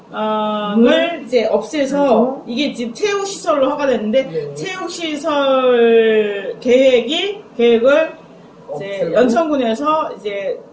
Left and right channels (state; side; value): identical; both; correlation 1.00